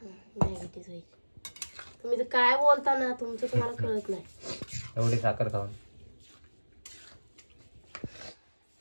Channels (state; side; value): inverted; both; correlation -1.00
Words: डायबिटीज व्हायची. तुम्ही तर काय बोलता ना, तुमचं तुम्हाला कळत नाही. एवढी साखर खाऊन